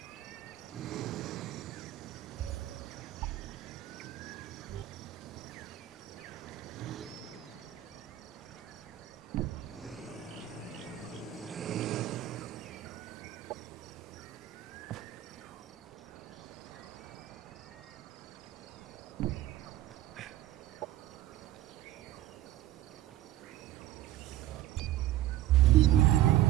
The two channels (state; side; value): quieter; left; 14.0 dB